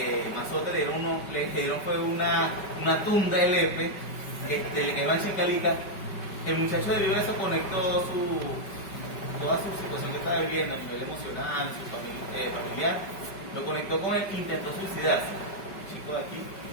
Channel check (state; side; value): late; right; 5.1 ms